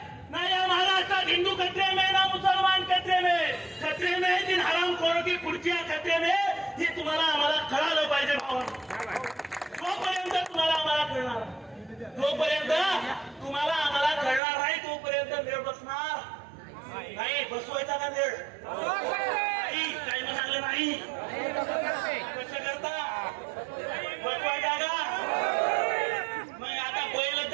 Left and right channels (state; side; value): drops out; left; at 14.4 s